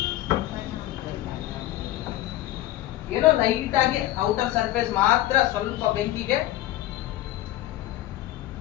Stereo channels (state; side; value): quieter; right; 14.9 dB